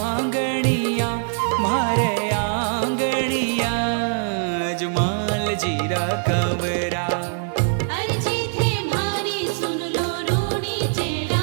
मारे आंगणिया। अजमाल जीरा कवरा। अर्जी थे मारी सुन लो रूणी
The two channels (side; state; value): left; silent; digital silence